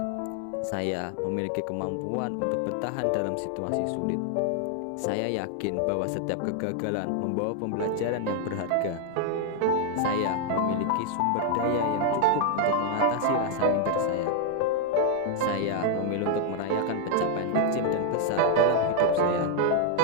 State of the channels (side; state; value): both; different; correlation 0.00